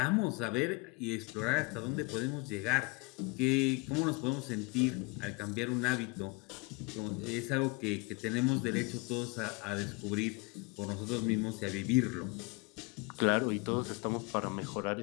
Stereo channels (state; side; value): quieter; right; 28.1 dB